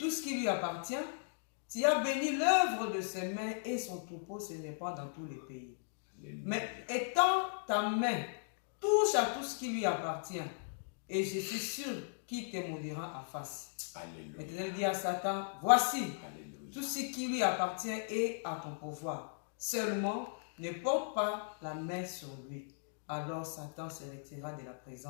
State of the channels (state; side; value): silent; right; digital silence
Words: ce qui lui appartient? Tu as béni l'œuvre de ses mains et son troupeau se répand dans tous les pays. Alléluia. Mais étends ta main, touche à tout ce qui lui appartient, et je suis sûr qu'il te maudira en face. Alléluia. L'Éternel dit à Satan, voici, Alléluia. Tout ce qui lui appartient est à ton pouvoir. Seulement, ne porte pas la main sur lui. Alors Satan se retira de la